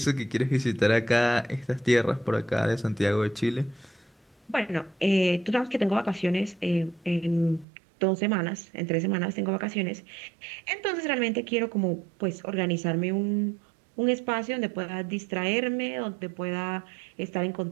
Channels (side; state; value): left; drops out; at 7.7 s